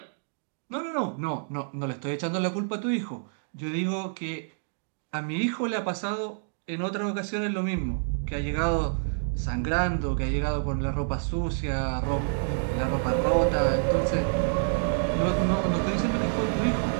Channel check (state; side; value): silent; left; digital silence